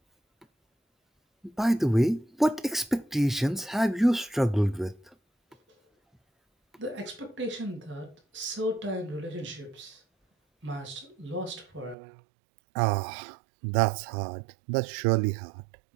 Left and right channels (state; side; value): drops out; left; at 12.0 s